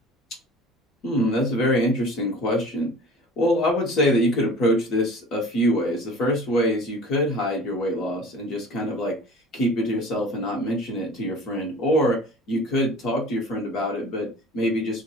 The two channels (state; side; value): normal; both; correlation 0.43